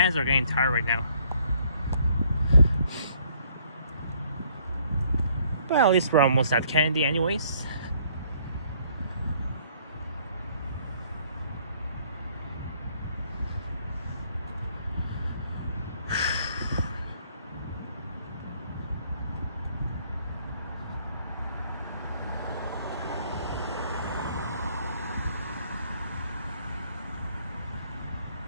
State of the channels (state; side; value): inverted; both; correlation -0.64